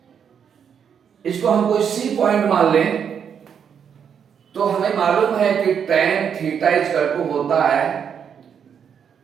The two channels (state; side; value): quieter; left; 7.6 dB